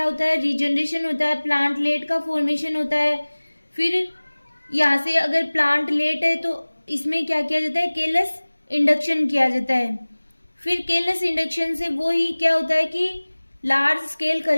होता है, रीजनरेशन होता है, प्लांटलेट का फॉर्मेशन होता है। फिर यहाँ से अगर प्लांटलेट है तो इसमें क्या किया जाता है, केलस इंडक्शन किया जाता है। फिर केलस इंडक्शन से वो ही क्या होता है कि large scale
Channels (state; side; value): inverted; both; correlation -1.00